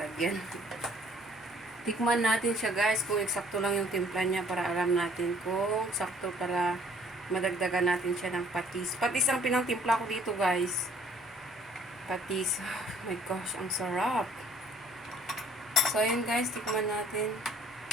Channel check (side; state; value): both; normal; correlation 0.58